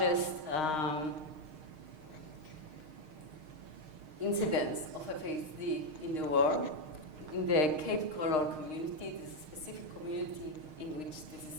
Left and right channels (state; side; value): late; left; 6.5 ms